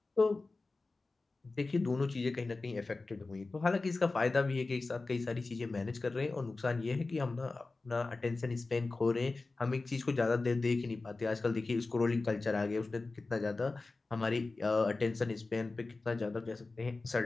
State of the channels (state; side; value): quieter; right; 3.5 dB